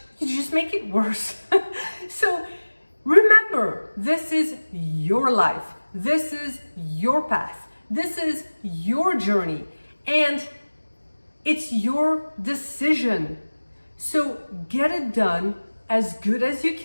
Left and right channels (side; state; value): both; inverted; correlation -1.00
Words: you just make it worse. So remember, this is your life. This is your path. This is your journey. And it's your decision. So get it done as good as you